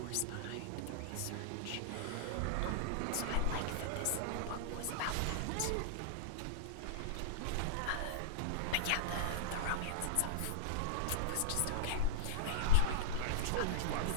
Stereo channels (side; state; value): both; different; correlation -0.01